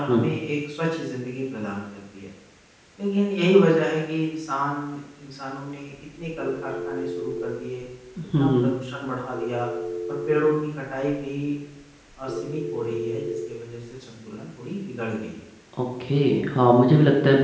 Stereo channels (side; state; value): both; identical; correlation 1.00